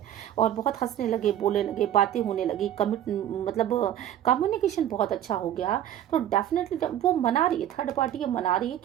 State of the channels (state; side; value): quieter; left; 11.4 dB